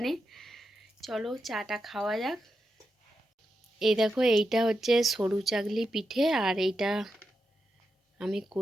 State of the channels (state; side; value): normal; both; correlation 0.87